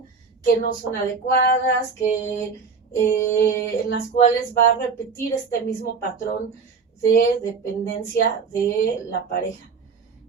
que no son adecuadas, que en las cuales va a repetir este mismo patrón de dependencia de la pareja.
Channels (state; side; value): quieter; left; 5.2 dB